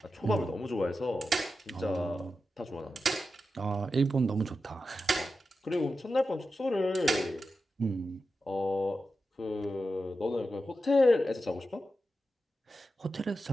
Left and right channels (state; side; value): normal; both; correlation 0.91